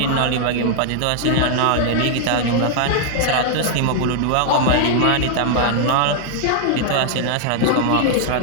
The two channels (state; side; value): different; both; correlation 0.00